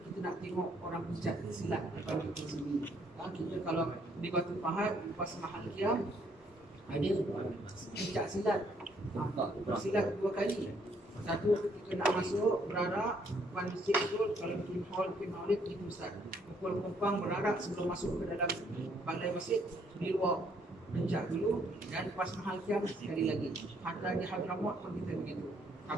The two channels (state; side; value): normal; both; correlation 0.68